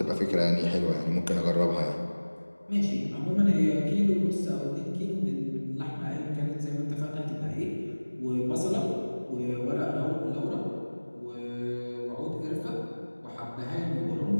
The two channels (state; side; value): inverted; both; correlation -1.00